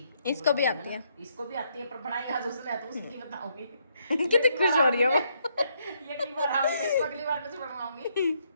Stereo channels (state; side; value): inverted; both; correlation -0.73